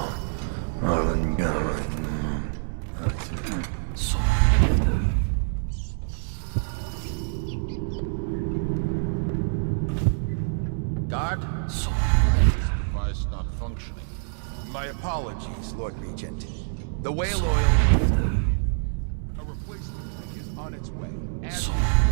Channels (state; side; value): silent; left; 61 dB below the other